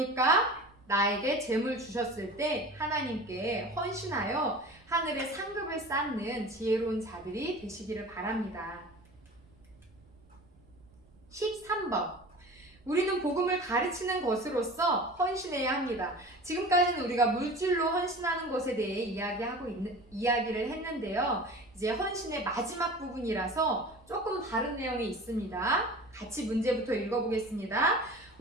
나에게 재물 주셨을 때 하나님께 헌신하여 하늘의 상급을 쌓는 지혜로운 자들이 되시기를 바랍니다. 13번. 우리는 복음을 가르치는 것으로서 헌신해야 합니다. 지금까지는 우리가 물질로 헌신하는 것에 대해 이야기를 했는데요. 이제 헌신의 마지막 부분이라서 조금 다른 내용이 있습니다. 같이 문제부터 읽어보겠습니다.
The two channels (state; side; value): noise; right; rumble, 27 dB below the sound